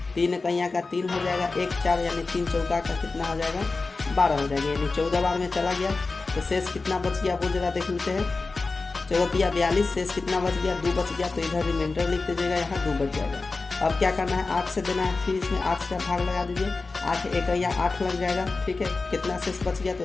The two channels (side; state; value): right; quieter; 3.8 dB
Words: 3 कहीं का 3 हो जाएगा, 1 4 यानी 3 चौका का कितना हो जाएगा 12 हो जाएगा, यानी 14 बार में चला गया। तो शेष कितना बच गया वो जरा देख लेते हैं। 14 42, शेष कितना बच गया 2 बच गया, तो इधर रिमाइंडर लिख दीजिएगा, यहाँ 2 बच जाएगा। अब क्या करना है 8 से देना है, फिर इसमें 8 से भाग लगा दीजिए, 8 1 या 8 लग जाएगा, ठीक है। कितना शेष बच गया, तो